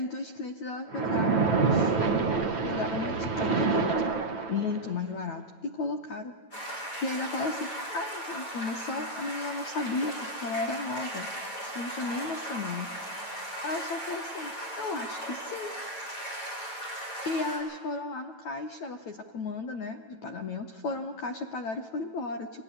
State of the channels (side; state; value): right; late; 9.1 ms